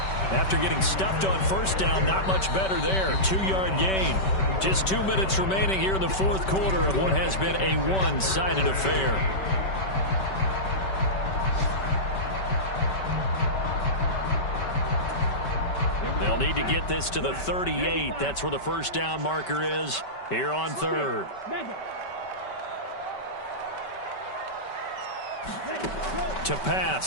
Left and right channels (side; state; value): right; late; 5.2 ms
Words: After getting stuffed on first down, not much better there. 2-yard gain. Just 2 minutes remaining here in the fourth quarter of what has been a one-sided affair. They'll They'll need to get this to the 38. That's where the first down marker is here on third. To